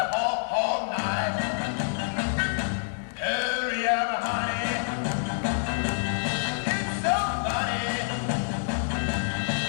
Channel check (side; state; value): right; silent; digital silence